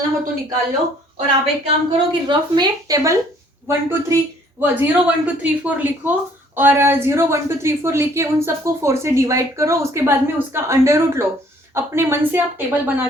हो तो निकाल लो, और आप एक काम करो कि रफ में टेबल 1 2 3 0 1 2 3 4 लिखो, और 0 1 2 3 4 लिख के उन सबको 4 से डिवाइड करो, उसके बाद में उसका अंडर रूट लो। अपने मन से आप टेबल बना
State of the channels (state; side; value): normal; both; correlation 0.60